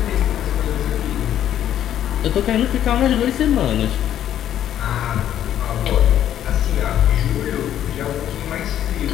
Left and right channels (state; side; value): quieter; right; 11.0 dB